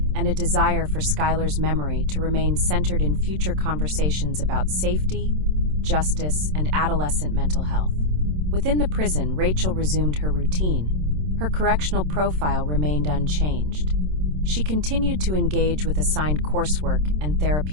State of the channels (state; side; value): late; left; 27 ms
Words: and a desire for Skylar's memory to remain centered in future conversations about safety, justice, and adolescent mental health. Within the prison, Rachel resumed her routine. Her correctional profile remained unchanged. She continued to engage with assigned coursework and